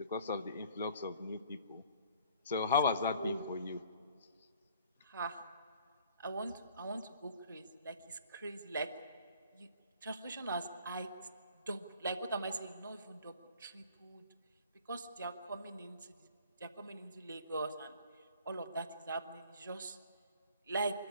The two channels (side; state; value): both; inverted; correlation -0.54